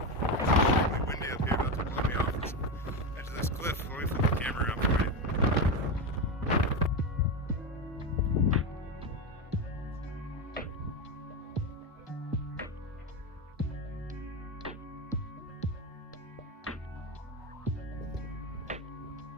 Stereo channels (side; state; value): both; normal; correlation 0.14